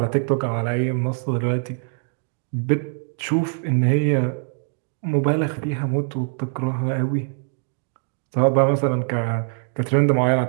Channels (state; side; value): silent; left; digital silence